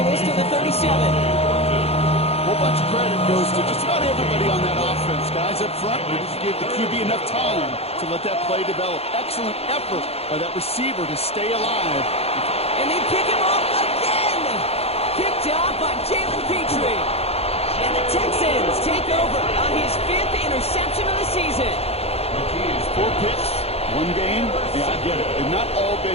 this to the 37. A whole bunch of credit goes to just about everybody on that offense. Guys up front, we just gave the QB enough time to let that play develop. Excellent effort by that receiver to stay alive. And they pick him off again. Picked off by Jalen Petrie. And the Texans take over on his 5th interception of the season. 4 picks, 1 game. Yeah, I get it. They've not all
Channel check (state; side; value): late; right; 0.29 ms